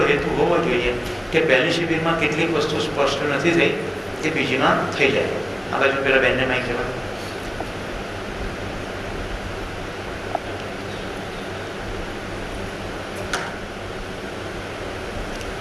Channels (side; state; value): both; identical; correlation 1.00